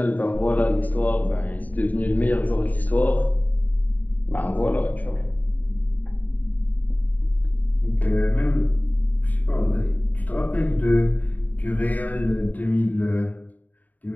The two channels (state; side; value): late; right; 0.079 ms